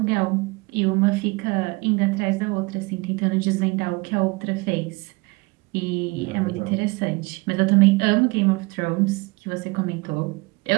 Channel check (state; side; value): quieter; left; 25.9 dB